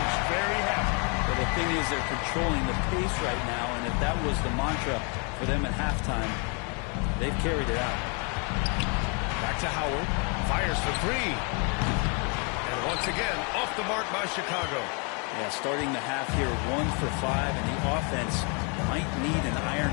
very happy. Well, the thing is they're controlling the pace right now, and if that was the mantra for them at halftime, they've carried it out. Back to Howard. Fires for 3. And once again, off the mark by Chicago. Yeah, starting the half here 1 for 5, and the offense might need an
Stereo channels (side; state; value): right; quieter; 35.3 dB